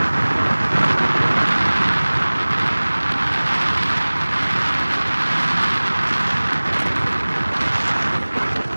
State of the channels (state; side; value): inverted; both; correlation -1.00